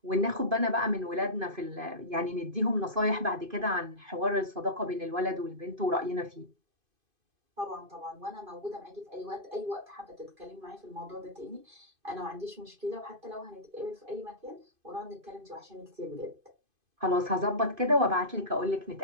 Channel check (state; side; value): late; left; 2.5 ms